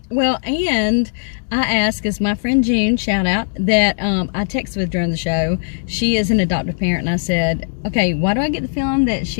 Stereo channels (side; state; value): right; silent; digital silence